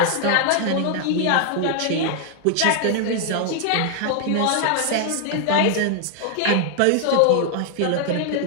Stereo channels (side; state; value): both; different; correlation 0.00